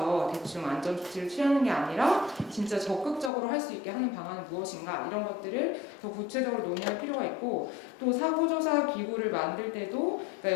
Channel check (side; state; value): right; drops out; at 3.3 s